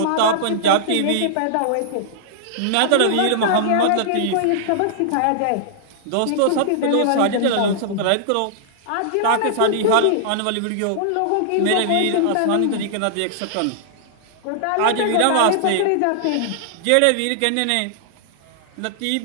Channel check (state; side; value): different; both; correlation -0.01